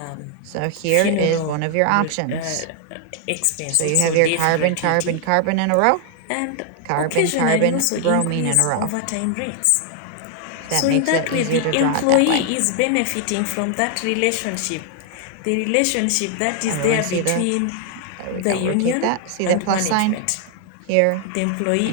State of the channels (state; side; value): different; both; correlation 0.00